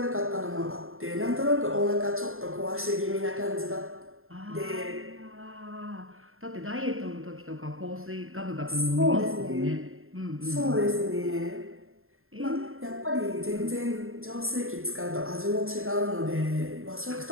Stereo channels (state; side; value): late; left; 0.61 ms